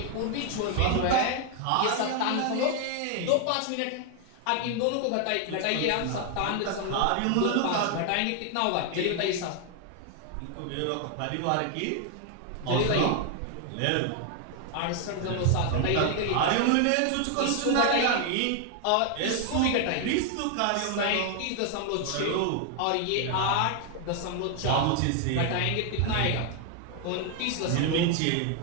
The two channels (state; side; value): different; both; correlation 0.00